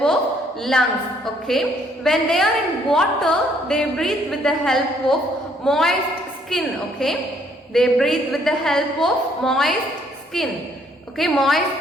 of lungs. Okay. When they are in water, they breathe with the help of moist skin. Okay. They breathe with the help of moist skin. Okay.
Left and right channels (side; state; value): both; normal; correlation 0.66